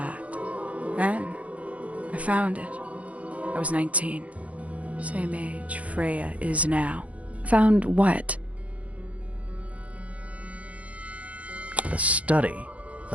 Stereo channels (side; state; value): left; late; 0.066 ms